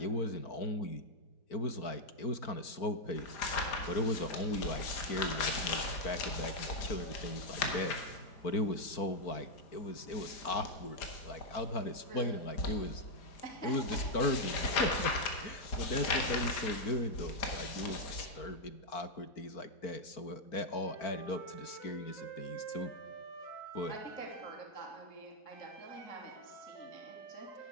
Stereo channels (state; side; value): late; right; 4.9 ms